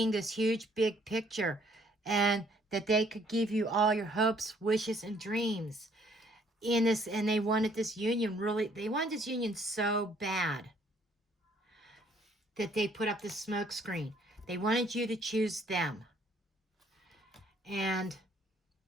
this huge, big picture, and that they could give you all your hopes, wishes, and dreams in this. And they wanted this union they wanted this union so bad that they put up this smoke screen. They wanted you to choose them. And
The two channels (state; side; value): normal; both; correlation 0.63